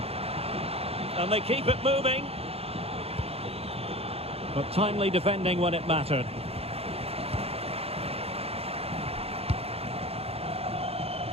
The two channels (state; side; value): late; left; 0.29 ms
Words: And they keep it moving. But timely defending when it mattered.